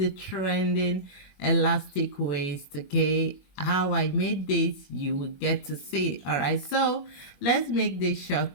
trending elastic waist, okay? How I made this, you will get to see, all right? So let's make this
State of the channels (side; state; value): right; late; 21 ms